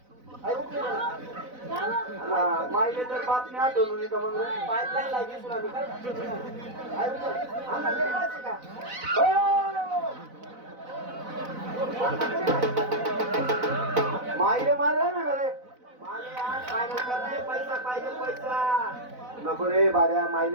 आई उकली माईले तर बातमी आठवून येतं मग पाईपलाईन लागली सुना मी काय आई उकत आमना गरीबाची का माईले मारा ना रे माले आज फायनल करणे पैसा पाहिजे पैसा नको रे बाऱ्या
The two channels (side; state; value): left; late; 4.0 ms